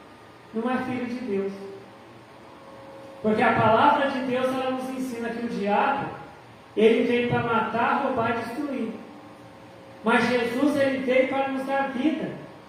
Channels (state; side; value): identical; both; correlation 1.00